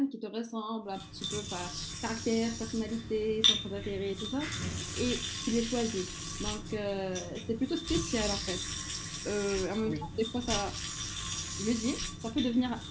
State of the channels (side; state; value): both; identical; correlation 1.00